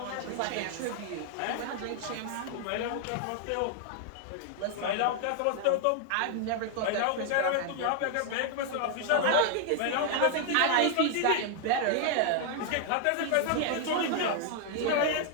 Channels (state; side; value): different; both; correlation 0.00